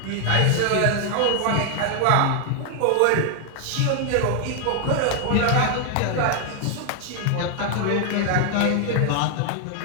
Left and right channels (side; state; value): both; different; correlation 0.00